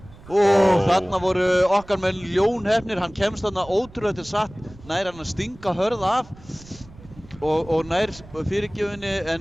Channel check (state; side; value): noise; right; rumble, 21 dB below the sound